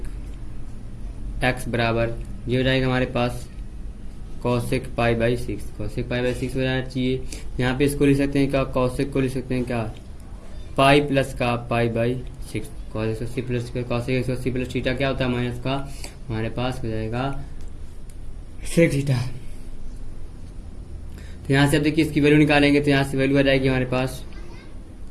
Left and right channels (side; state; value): both; identical; correlation 1.00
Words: x बराबर, ये हो जाएगा हमारे पास cosec pi by 6, cosec pi by 6 हो जाना चाहिए। यहाँ पे इसको लिख सकते हैं क्या, कॉसेक को लिख सकते हैं क्या, पाई प्लस का पाई by 6, cosec 80 plus cosec 180 plus theta क्या होता है माइनस का, हमारे पास हो जाएगा सेक थीटा। तो यहाँ से अब देखिए इसकी वैल्यू निकालेंगे, तो यहाँ से वैल्यू आ जाएगी हमारे पास